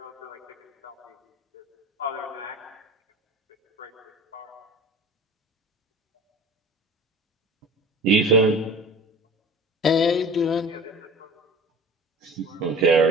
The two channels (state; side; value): normal; both; correlation 0.39